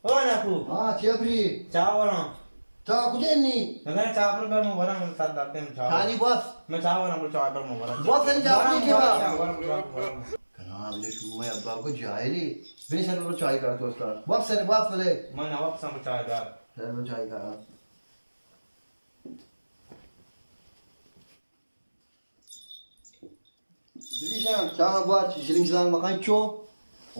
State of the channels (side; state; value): both; inverted; correlation -1.00